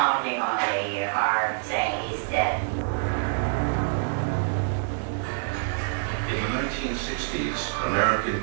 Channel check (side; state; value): left; silent; digital silence